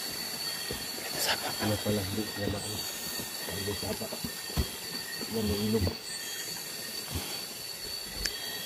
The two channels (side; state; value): both; identical; correlation 1.00